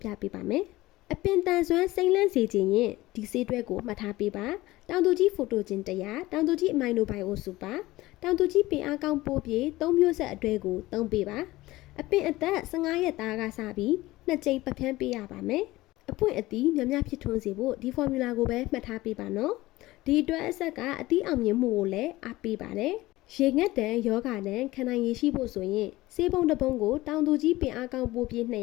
ပြပေးပါမယ်အပင်တန်စွမ်းစိမ့်လန့်စေခြင်းရင်ဒီဆေးတွဲကိုမှတ်ထားပေးပါတောင်သူကြီးဖိုတိုဂျင်100တောင်သူကြီးအမိုင်နိုဘိုင်အိုစူပါတောင်သူကြီးပင်အားကောင်းပိုးပြေ3မျိုးဆက်အတွဲကိုသုံးပေးပါအပင်အသက်15ရက်သားကစပြီး2ကြိမ်ပတ်ဖျန်းပေးရပါမယ်အပွင့်အသီးများများဖြစ်ထွန်းစေဖို့ဒီဖော်မြူလာကိုပဲမှတ်ထားပေးပါနော်ဒီအတွက်အဆက်ကအသီးအောင်မြင်မှုကိုလည်းအားပေးပါတယ်ရေငတ်တန်ယောဂတန်ခံနိုင်ရရှိဖို့ဆိုရင်ဆေးပုံတစ်ပုံကိုတောင်သူကြီးပင်အားကောင်းပိုးပြေး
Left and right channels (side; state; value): right; quieter; 18.4 dB